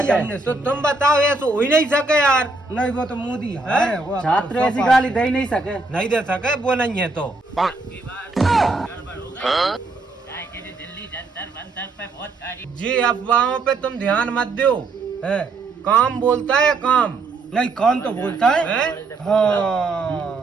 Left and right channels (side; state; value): left; quieter; 3.5 dB